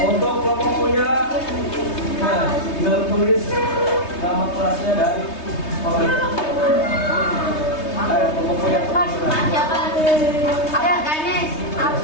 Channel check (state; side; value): late; right; 3.2 ms